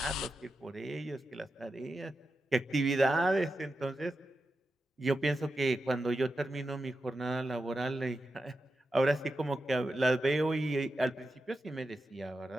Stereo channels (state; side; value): normal; both; correlation 0.90